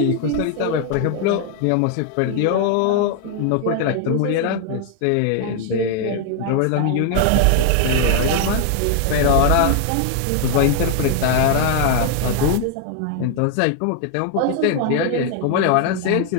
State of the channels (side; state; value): both; different; correlation 0.00